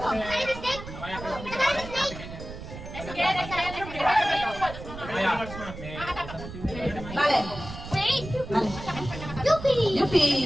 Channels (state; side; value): noise; right; rumble, 11 dB below the sound